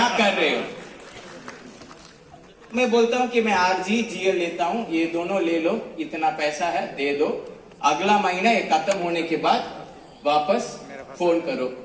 कर रहे हो? मैं बोलता हूं कि मैं आरजी जीएल लेता हूं, ये दोनों ले लो, इतना पैसा है दे दो, अगला महीना ये खत्म होने के बाद वापस फोन करो,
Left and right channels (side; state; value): both; identical; correlation 1.00